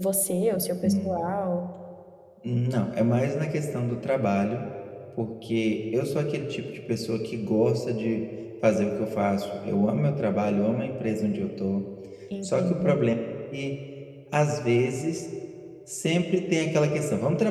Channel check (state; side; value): identical; both; correlation 1.00